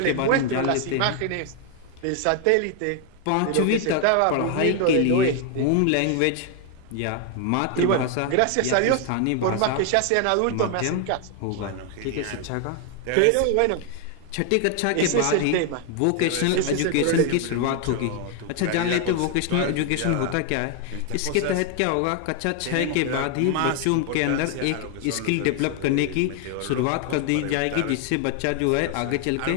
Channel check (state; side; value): different; both; correlation 0.00